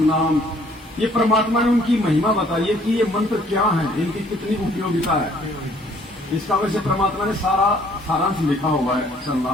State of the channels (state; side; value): normal; both; correlation 0.61